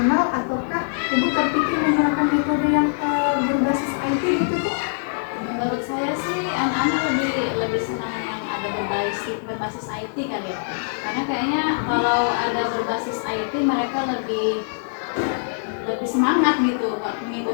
ataukah ibu terpikir menggunakan metode yang berbasis IT gitu Bu? Menurut saya sih anak-anak lebih senang yang ada berbasis IT kali ya. Karena kayaknya kalau ada berbasis IT mereka lebih semangat gitu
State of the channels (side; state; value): right; silent; digital silence